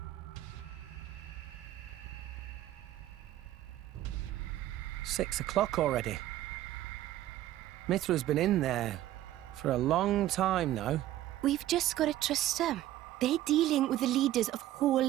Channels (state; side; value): quieter; left; 13.9 dB